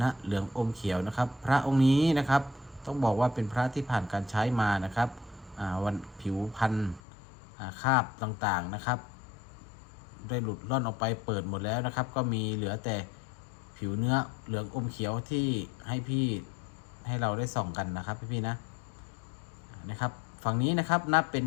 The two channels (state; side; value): drops out; right; at 7.0 s